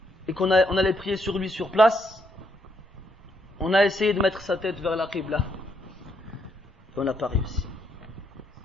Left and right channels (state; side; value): normal; both; correlation 0.75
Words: et on allait prier sur lui sur place, on a essayé de mettre sa tête vers la qibla. Et on n'a pas réussi.